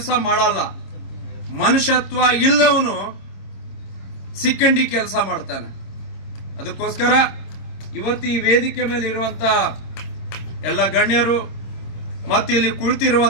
ಮಾಡಲ್ಲ. ಮನುಷ್ಯತ್ವ ಇಲ್ಲವನು ಸಿಕ್ಕಂಡಿ ಕೆಲಸ ಮಾಡ್ತಾನೆ. ಅದಕ್ಕೋಸ್ಕರ ಇವತ್ತು ಈ ವೇದಿಕೆ ಮೇಲೆ ಇರುವಂತ ಎಲ್ಲ ಗಣ್ಯರು ಮತ್ತು ಇಲ್ಲಿ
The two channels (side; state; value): right; late; 26 ms